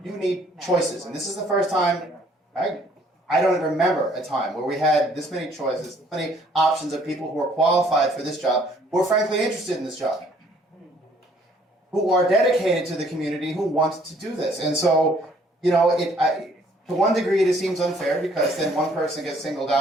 You need choices, and this is the first time I don't remember a time where we had this many choices, this many options of people who are qualified for this job, who are frankly interested in this job, who are dedicated to the community, who want to do this. And so, to one degree, it seems unfair because then one person gets singled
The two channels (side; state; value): both; normal; correlation 0.61